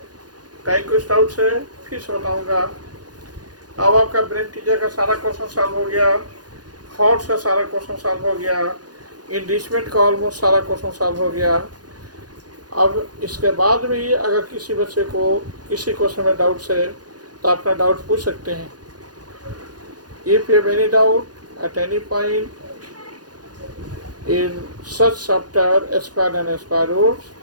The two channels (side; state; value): left; late; 0.69 ms